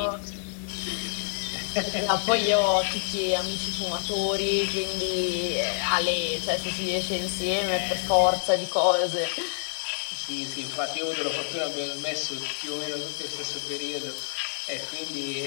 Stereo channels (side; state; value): right; silent; digital silence